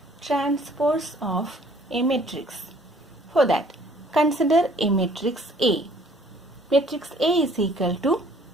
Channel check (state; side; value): normal; both; correlation 0.58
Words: transpose of a matrix. For that, consider a matrix A. Matrix A is equal to